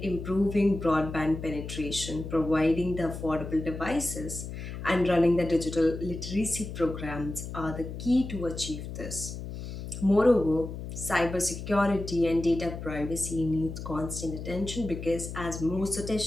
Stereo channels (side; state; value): left; noise; hum, 8 dB below the sound